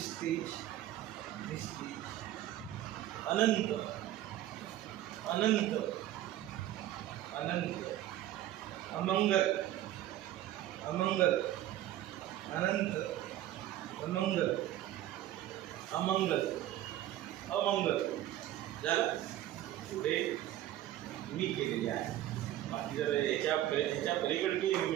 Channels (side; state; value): left; quieter; 13.4 dB